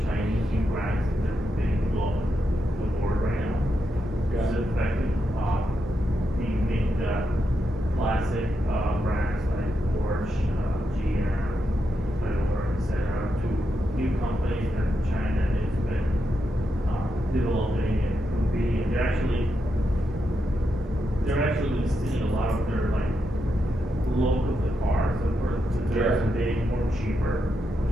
Chinese new brands that are being global the board right now. Yeah. It's effective. We make the classic brands like Porsche, GM, Toyota, etc. to new companies that China has been developing and improving, and they're actually stealing a lot of their like look of the cars that they're being more cheaper, which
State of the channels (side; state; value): both; normal; correlation 0.84